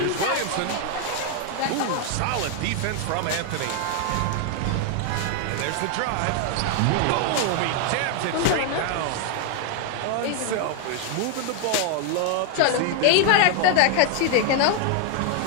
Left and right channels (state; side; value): different; both; correlation 0.00